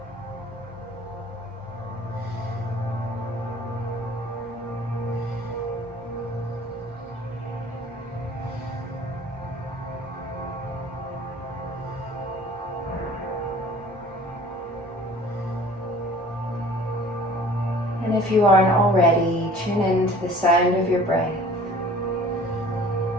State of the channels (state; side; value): normal; both; correlation 0.48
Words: And if you aren't already, tune into the sound of your breath.